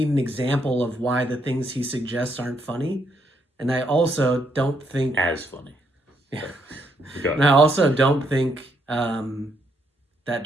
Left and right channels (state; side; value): normal; both; correlation 0.75